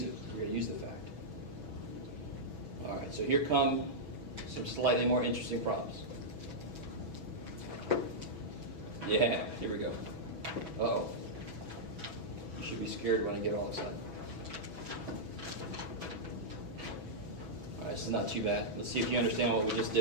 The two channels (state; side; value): late; left; 5.7 ms